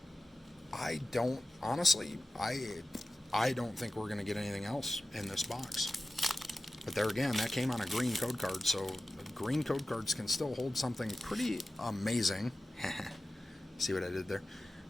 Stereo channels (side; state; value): both; normal; correlation 0.95